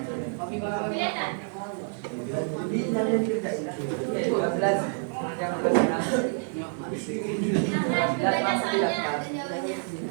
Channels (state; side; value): silent; left; 60 dB below the other